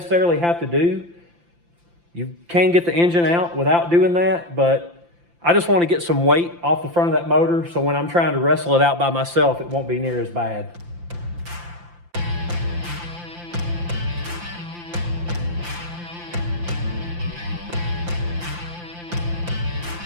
have to do. You can get the engine out without doing that, but I just wanna get some weight off the front of that motor, so when I'm trying to wrestle it out by myself, it won't be near as bad.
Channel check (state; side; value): late; left; 5.8 ms